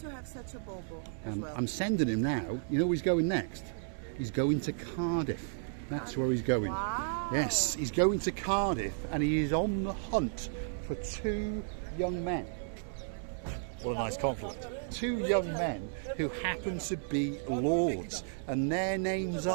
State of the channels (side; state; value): left; silent; 56 dB below the other